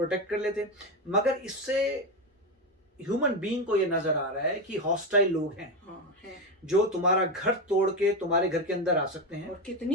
कर लेते। मगर इससे ह्यूमन बीइंग को ये नजर आ रहा है कि हॉस्टाइल लोग हैं, जो तुम्हारा घर तोड़ के तुम्हारे घर के अंदर आ सकते हैं। और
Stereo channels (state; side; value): normal; both; correlation 0.13